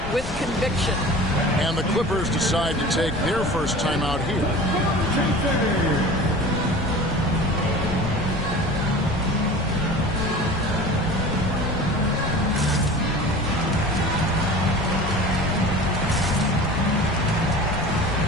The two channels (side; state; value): left; noise; rumble, 8 dB below the sound